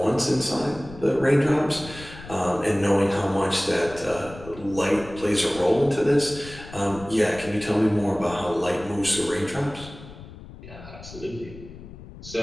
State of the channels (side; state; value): left; noise; rumble, 16 dB below the sound